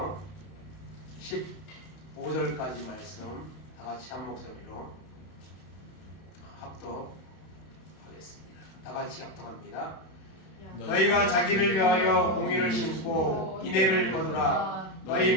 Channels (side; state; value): right; late; 32 ms